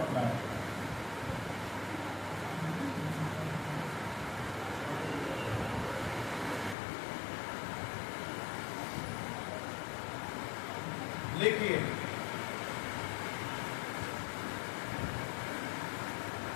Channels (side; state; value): right; drops out; at 6.8 s